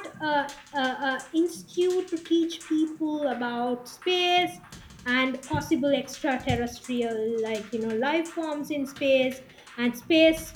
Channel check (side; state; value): both; identical; correlation 1.00